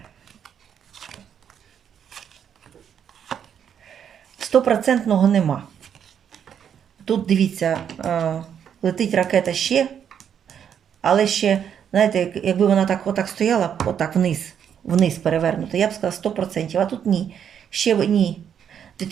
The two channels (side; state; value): left; quieter; 8.4 dB